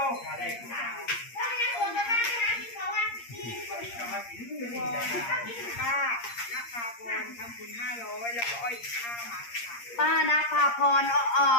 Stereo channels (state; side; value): late; right; 8.6 ms